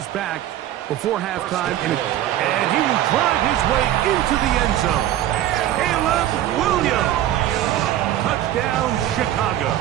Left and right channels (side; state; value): left; quieter; 12.6 dB